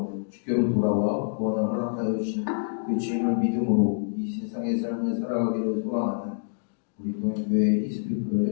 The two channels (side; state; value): right; silent; digital silence